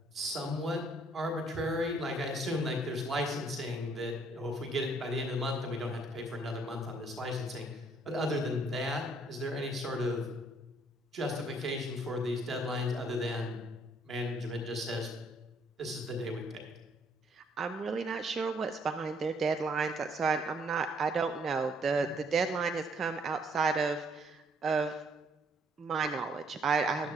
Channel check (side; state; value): both; normal; correlation 0.66